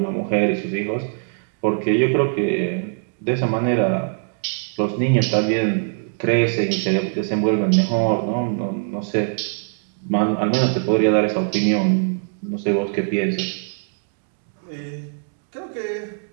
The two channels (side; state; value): left; silent; digital silence